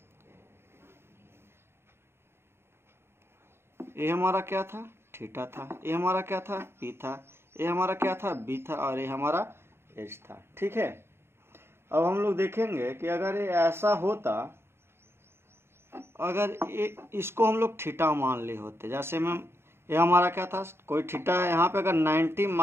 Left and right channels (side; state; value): left; late; 0.12 ms